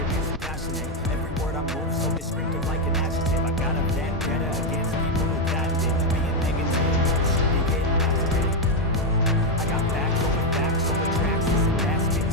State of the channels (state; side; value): normal; both; correlation 0.04